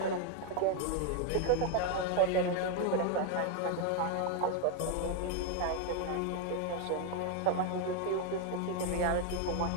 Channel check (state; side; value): different; both; correlation 0.01